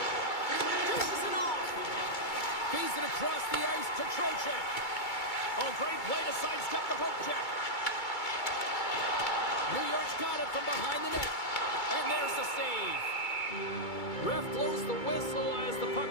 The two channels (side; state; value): right; late; 2.3 ms